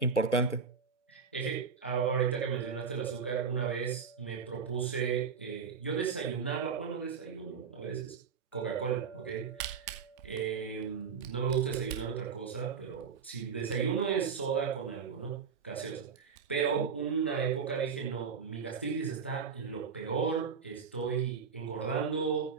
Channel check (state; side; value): quieter; left; 6.0 dB